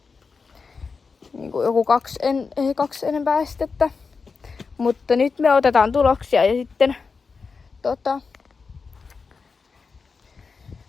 Niin kuin joku 2 enempää estettä. Mutta nyt me otetaan tuloksia ja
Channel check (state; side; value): quieter; right; 4.9 dB